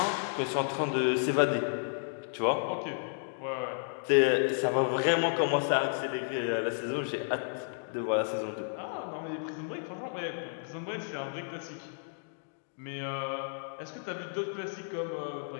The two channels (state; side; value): silent; right; digital silence